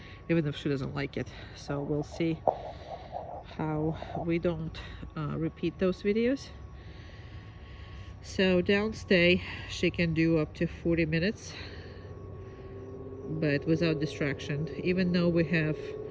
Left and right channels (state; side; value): identical; both; correlation 1.00